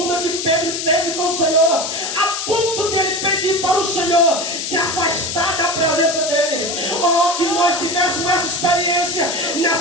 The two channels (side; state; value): left; noise; hiss, 4 dB below the sound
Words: que Pedro teve com o Senhor, a ponto de ele pedir para o Senhor se afastar da presença dele. Oh, que nós tivéssemos essa experiência